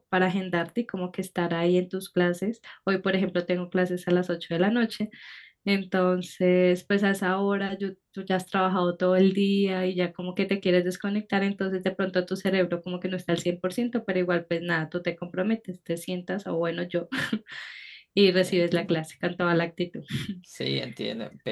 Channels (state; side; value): identical; both; correlation 1.00